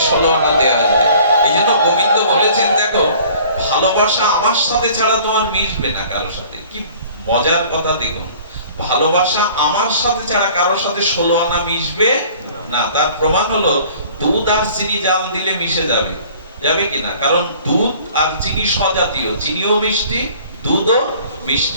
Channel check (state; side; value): inverted; both; correlation -0.51